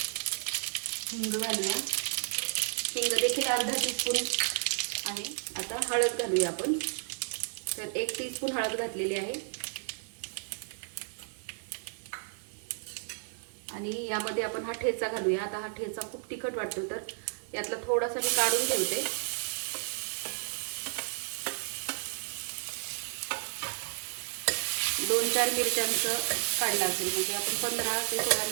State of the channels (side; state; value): left; silent; digital silence